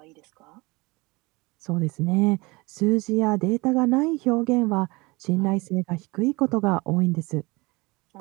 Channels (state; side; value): quieter; left; 24.2 dB